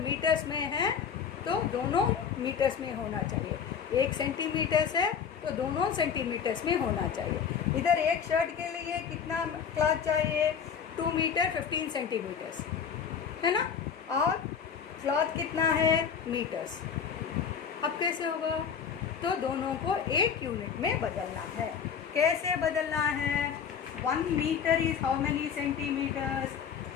में है तो दोनों मीटर्स में होना चाहिए. 1 सेंटीमीटर्स है तो दोनों सेंटीमीटर्स में होना चाहिए. इधर एक शर्ट के लिए कितना क्लॉथ चाहिए, 2 मीटर 15 सेंटीमीटर्स है ना, और क्लॉथ कितना है, मीटर्स. अब कैसे होगा, तो दोनों को एक यूनिट में बदलना है. कैसे बदलना है, 1 metre is how many centimetres,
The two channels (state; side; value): quieter; right; 7.1 dB